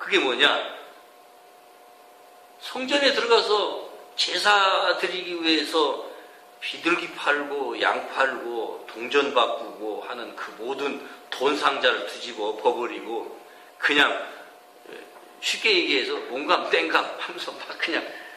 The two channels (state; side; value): identical; both; correlation 1.00